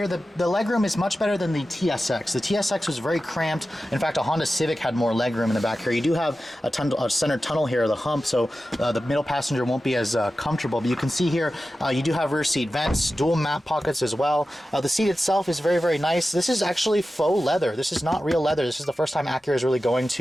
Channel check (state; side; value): normal; both; correlation 0.93